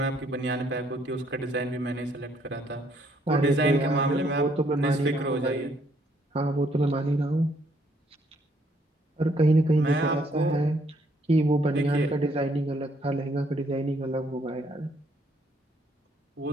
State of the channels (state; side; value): normal; both; correlation 0.68